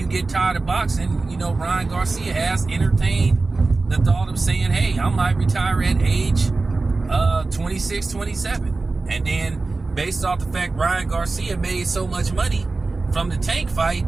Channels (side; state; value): left; quieter; 3.6 dB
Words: get tired of boxing. You know, Ryan Garcia has entertained the thought of saying, hey, I might retire at age 26, 27. And then based off the fact Ryan Garcia made so much money from the Tank fight,